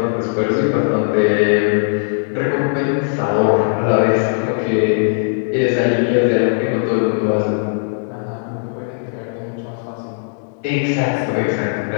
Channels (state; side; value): silent; right; digital silence